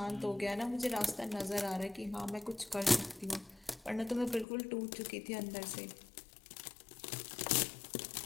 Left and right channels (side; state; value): right; drops out; at 4.5 s